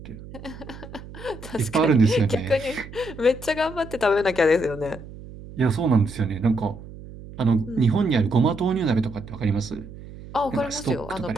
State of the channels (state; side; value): noise; right; hum, 15 dB below the sound